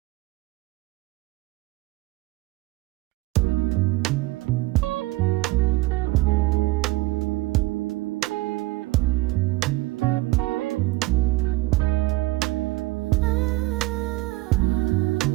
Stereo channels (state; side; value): quieter; left; 19.4 dB